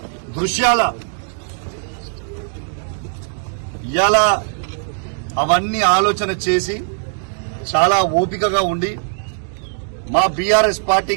దృశ్యాల ఇలా అవన్నీ ఆలోచన చేసి చాలా ఓపికగా ఉండి మా బీఆర్ఎస్ పార్టీ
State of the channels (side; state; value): left; silent; digital silence